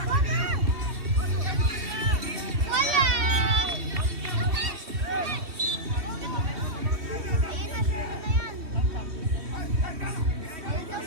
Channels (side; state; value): left; late; 3.1 ms